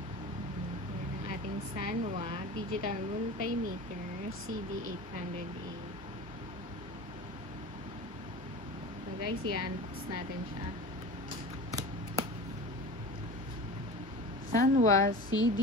Ayan ang ating Sanwa Digital Multimeter CD800A. So guys, i-unbox natin siya. Sanwa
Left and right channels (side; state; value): both; normal; correlation 0.34